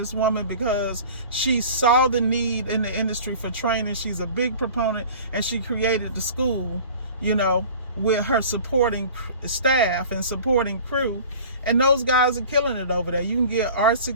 woman because she saw the need in the industry for training. She's a big proponent, and she created the school, with her supporting staff and supporting crew. And those guys are killing it over there. You can get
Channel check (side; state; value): both; inverted; correlation -0.42